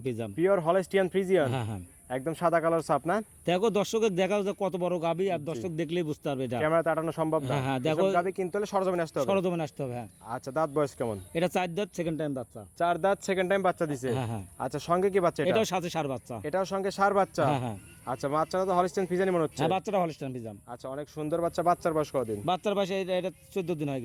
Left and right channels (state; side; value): identical; both; correlation 1.00